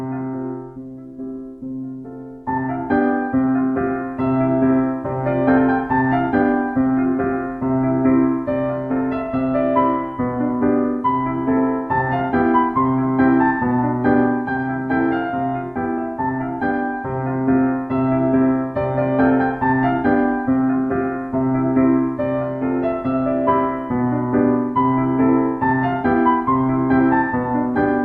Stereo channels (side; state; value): both; identical; correlation 1.00